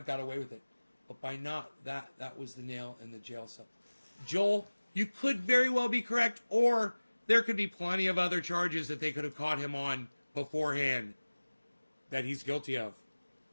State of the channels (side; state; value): both; inverted; correlation -1.00